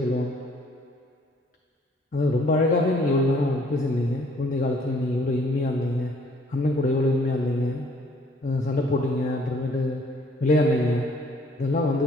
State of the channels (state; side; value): normal; both; correlation 0.61